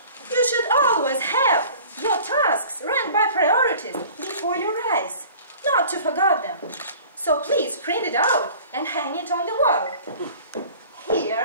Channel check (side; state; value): both; inverted; correlation -0.46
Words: you should always have your tasks ranked by priorities before your eyes, not to forget them. So please print it out and hang it on the wall.